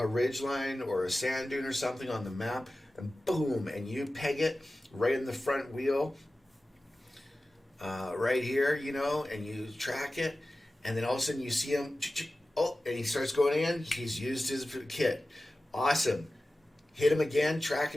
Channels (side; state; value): both; normal; correlation 0.95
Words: ridge line or a sand dune or something on the map, and boom, and you peg it right in the front wheel, right here, and you track it, and then all of a sudden you see him, oh, and he starts going in, he's used his kit. Awesome. Hit him again, track